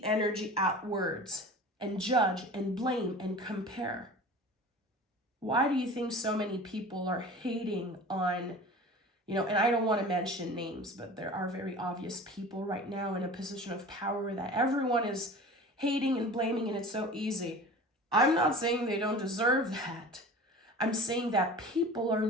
energy outwards and judge and blame and compare. Why do you think so many people are hating on, and I don't want to mention names, but there are very obvious people right now in a position of power that everyone is hating and blaming, and it's so easy. I'm not saying they don't deserve that. I'm saying that people are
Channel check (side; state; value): both; normal; correlation 0.38